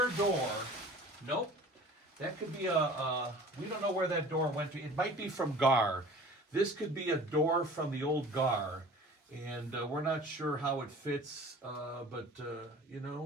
door. Nope. That could be we don't know where that door went to. It might be from GAR. This could be a door from the old GAR. And we're not sure how it fits, but, you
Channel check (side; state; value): both; normal; correlation 0.44